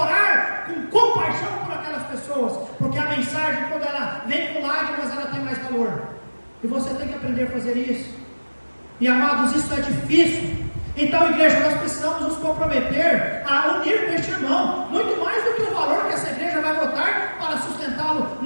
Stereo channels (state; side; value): inverted; both; correlation -1.00